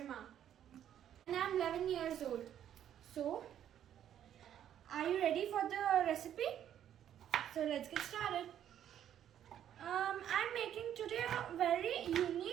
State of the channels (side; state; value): left; quieter; 10.3 dB